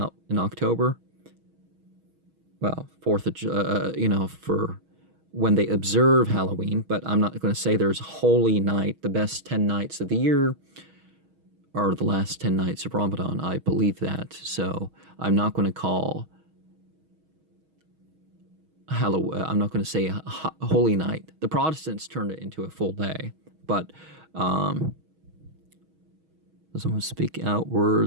in October. Well, 4th of, for when they observe Halloween, but I'm not going to say there's Holy Night, the best 10 nights of the year, or the last 10 nights of Ramadan. I believe that. So I'm not going to call Halloween, I'm not going to say Holy Night. The Protestants turned it into a full day, but someone speak out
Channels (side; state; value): left; late; 6.3 ms